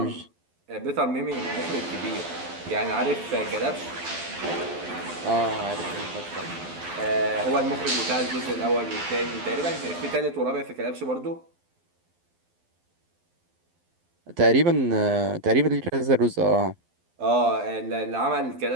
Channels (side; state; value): left; late; 12 ms